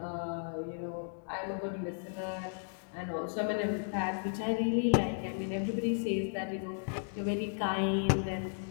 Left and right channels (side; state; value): right; silent; digital silence